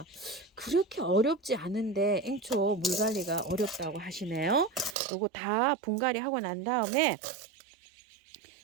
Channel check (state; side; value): drops out; left; at 5.0 s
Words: 그렇게 어렵지 않은데 앵초 물 관리가 어렵다고 하시네요. 요거 다 분갈이 하고 난 다음에